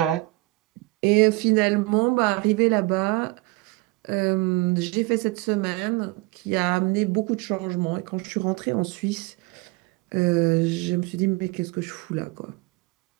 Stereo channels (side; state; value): left; quieter; 22.7 dB